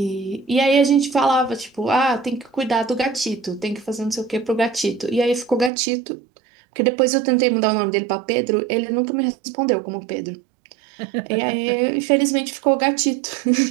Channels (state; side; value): drops out; left; at 5.7 s